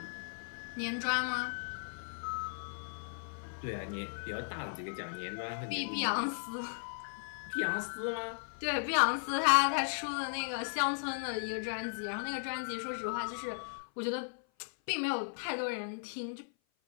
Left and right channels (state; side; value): silent; right; 54 dB below the other